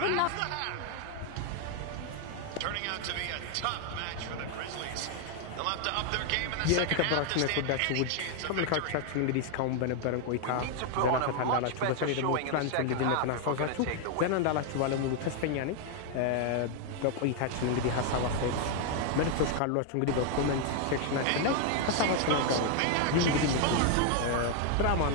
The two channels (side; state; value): both; different; correlation 0.00